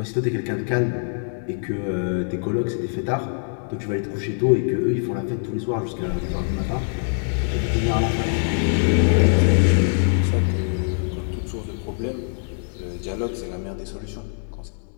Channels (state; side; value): silent; right; 63 dB below the other